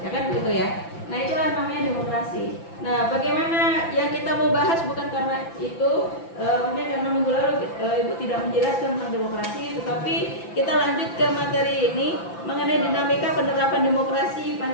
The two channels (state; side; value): late; right; 5.9 ms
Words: ya kan begitu ya. Nah itulah namanya demokrasi. Nah bagaimana yang kita mau bahas bukan karena itu, mungkin karena minggu lalu Ibu tidak menjelaskan tentang demokrasi, tetapi kita lanjut ke materi ini mengenai dinamika penerapan demokrasi